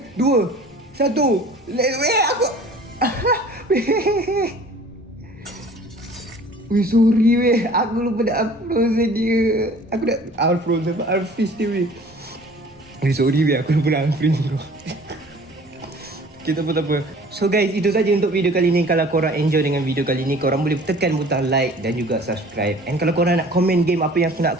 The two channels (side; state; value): both; normal; correlation 0.48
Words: 2, 1. Weh, aku. Weh, sorry, weh. Aku lupa nak unfrozen dia. Aku nak unfrozen, unfreeze dia, weh. Weh, sorry, weh. Aku lupa nak unfreeze tu. Okay, tak apa. So guys, itu saja untuk video kali ni. Kalau korang enjoy dengan video kali ni, korang boleh tekan butang like dan juga subscribe. And kalau korang nak komen game apa yang aku